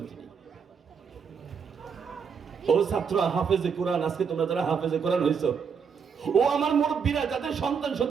তিনি। ও ছাত্র হাফেজে কোরআন, আজকে তোমরা যারা হাফেজে কোরআন হইছো, ও আমার মুরব্বীরা যাদের সন্তান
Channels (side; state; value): left; quieter; 6.4 dB